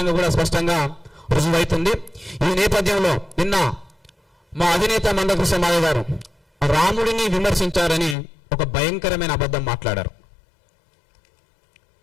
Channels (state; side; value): drops out; right; at 8.2 s